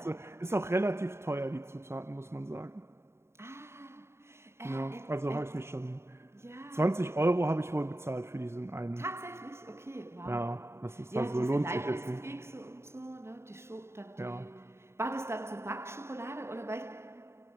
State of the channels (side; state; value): left; late; 0.13 ms